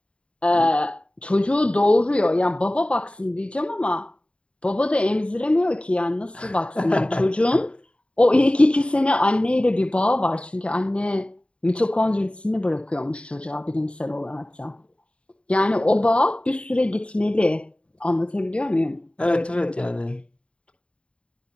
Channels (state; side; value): late; right; 0.058 ms